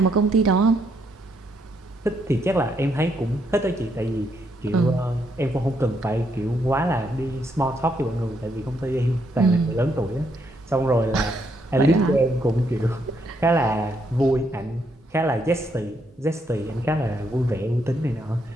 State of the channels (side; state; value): both; normal; correlation 0.75